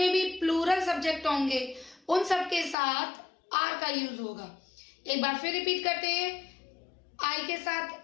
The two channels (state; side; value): drops out; right; at 2.8 s